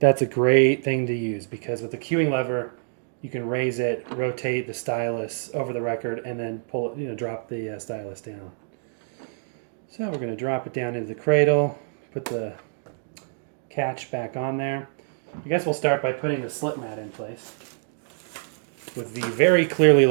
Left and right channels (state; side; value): silent; left; digital silence